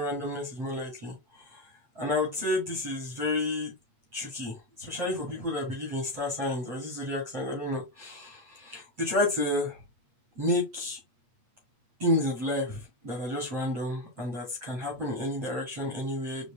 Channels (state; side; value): late; left; 8.5 ms